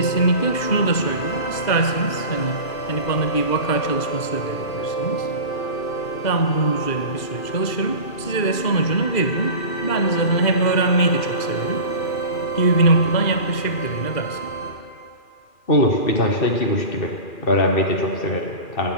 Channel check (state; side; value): late; right; 2.4 ms